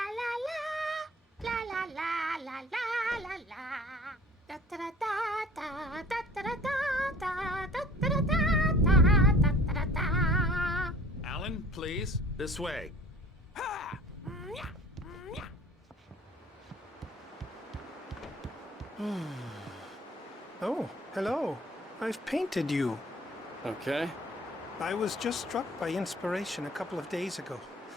Alan, please, this way. Oh, hello. I've painted you. Okay. I was just struck by inspiration a couple of days ago.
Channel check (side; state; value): both; normal; correlation 0.49